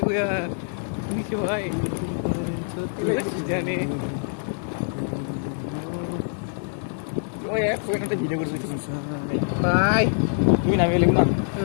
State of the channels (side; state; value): right; silent; 61 dB below the other